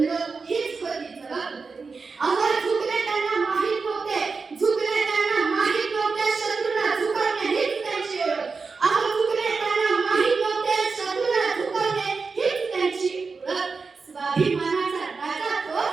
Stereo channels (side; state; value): left; quieter; 4.6 dB